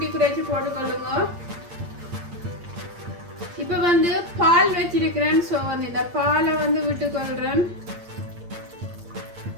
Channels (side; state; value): left; late; 8.7 ms